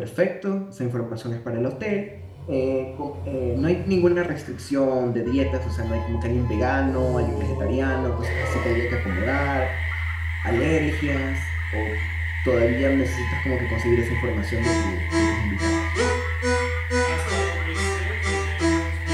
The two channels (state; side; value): identical; both; correlation 1.00